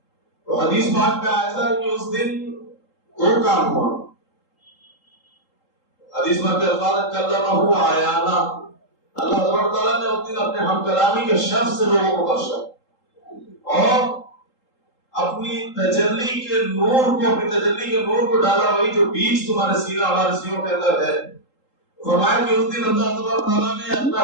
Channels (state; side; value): late; right; 3.8 ms